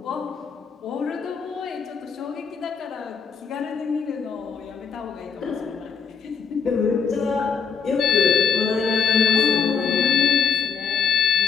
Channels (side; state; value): right; quieter; 6.0 dB